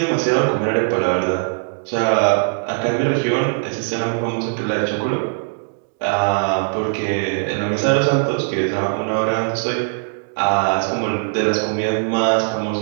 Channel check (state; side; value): silent; left; digital silence